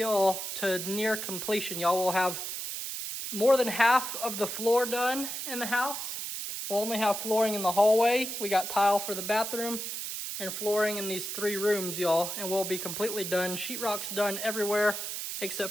to near completion. Y'all will have more than half of the floor done in the house. We'll only have flooring in the hallway. We got tile for the bathroom and flooring in these 3 rooms, y'all. And we'll be completely done. Sheetrock's done everywhere except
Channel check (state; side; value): noise; right; hiss, 5 dB below the sound